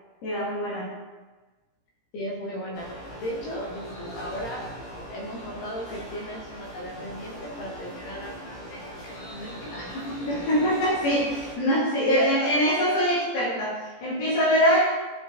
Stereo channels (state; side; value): late; right; 17 ms